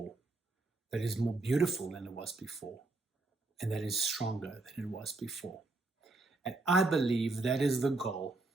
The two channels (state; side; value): quieter; left; 3.2 dB